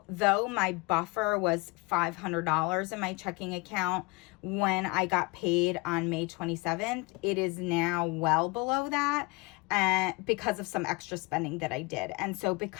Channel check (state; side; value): quieter; right; 26.4 dB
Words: though my buffer was $500 in my checking account when I got paid on May 27th, it is now well below that. Because of some extra spending that I did. And so